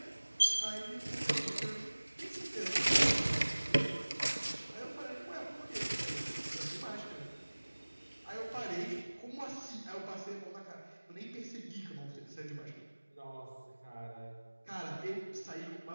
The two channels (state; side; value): inverted; both; correlation -1.00